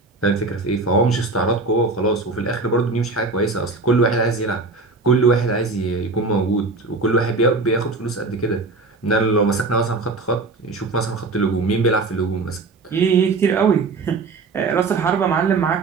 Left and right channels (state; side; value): quieter; left; 3.7 dB